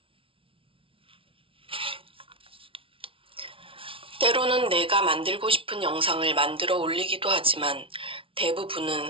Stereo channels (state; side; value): late; left; 0.26 ms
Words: 때로는 내가 만들고 싶은 영상을 만들어 올리기도 하지만